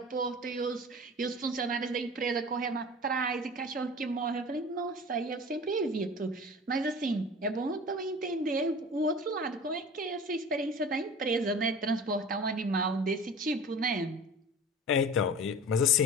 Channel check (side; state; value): both; normal; correlation 0.39